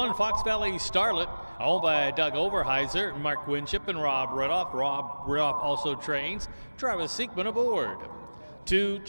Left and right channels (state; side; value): inverted; both; correlation -1.00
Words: Fox Valley Starlet, owned by Doug Overheiser, Mark Winship, and Rob Riddoff. Rob Riddoff also trains. Travis Seekman aboard. 2